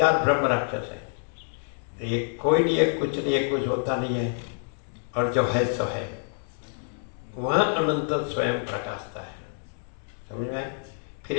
ब्रह्म राक्षस है। तो ये कोई नहीं है, कुछ नहीं है, कुछ होता नहीं है, और जो है सो है, वहां अनंत स्वयं प्रकाशता है। समझ में? फिर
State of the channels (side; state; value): right; silent; digital silence